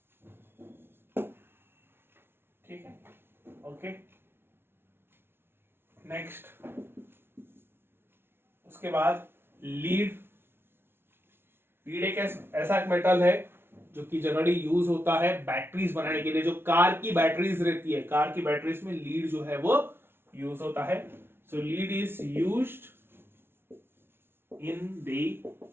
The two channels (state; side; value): late; left; 0.11 ms